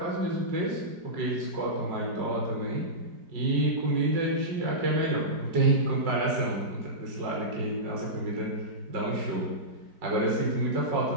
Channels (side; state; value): left; late; 4.8 ms